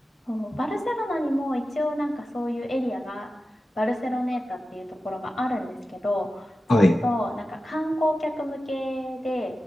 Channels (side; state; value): both; normal; correlation 0.93